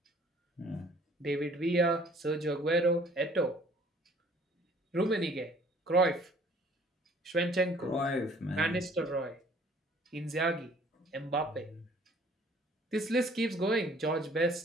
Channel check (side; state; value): both; normal; correlation 0.56